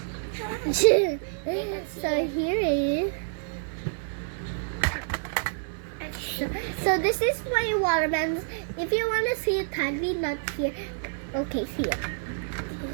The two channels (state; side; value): silent; left; 59 dB below the other